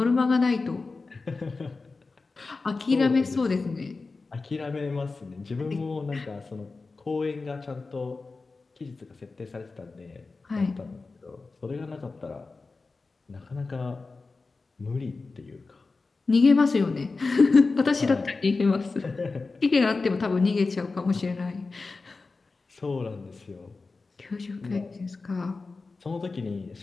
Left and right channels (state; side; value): quieter; right; 3.9 dB